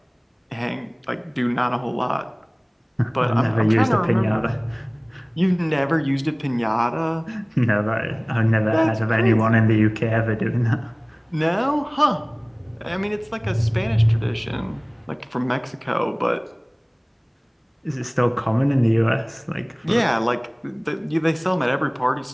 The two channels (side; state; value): both; identical; correlation 1.00